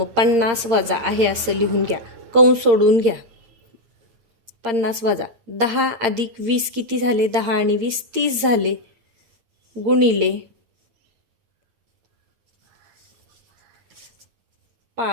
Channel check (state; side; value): late; left; 8.7 ms